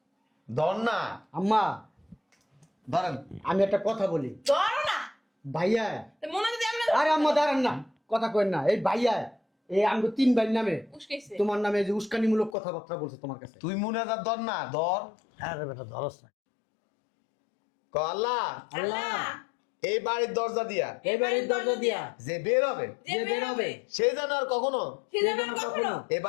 ধর না আম্মা ধরেন। আমি একটা কথা বলি, ধরো না। ভাইয়া। মনে যদি আমরা আরে আম্মা দাঁড়ান না, কথা কইন না। এই ভাইয়া এই আমগো 3 ভাই নামে উস্কাইছে। তোমার নামে যে উস্কানিমূলক কথাবার্তা বলছে তোমার কাছে। তুই মুনাজাত ধর না, ধর। আরে বেটা ধরস না। ক আল্লাহ আল্লাহ এই বাড়ির দরজা দিয়া এই বাড়ির দরজা দিয়া যে বের হবে যে বের হবে সে যেন আর কখনো সে যেন কখনো এই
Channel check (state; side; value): drops out; right; at 12.6 s